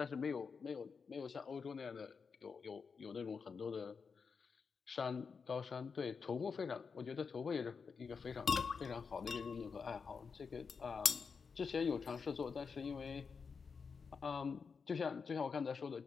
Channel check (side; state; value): right; quieter; 5.5 dB